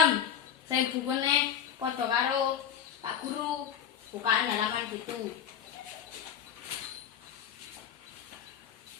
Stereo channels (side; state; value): right; quieter; 8.7 dB